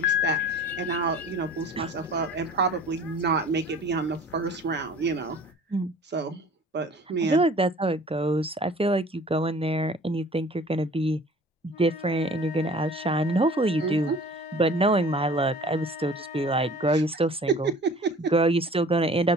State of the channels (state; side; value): normal; both; correlation 0.47